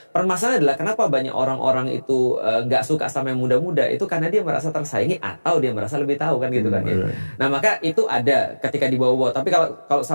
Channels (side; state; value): both; inverted; correlation -1.00